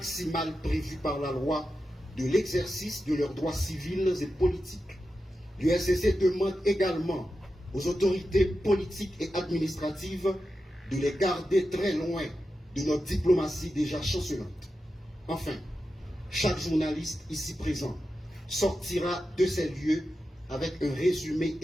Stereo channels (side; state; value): both; normal; correlation 0.90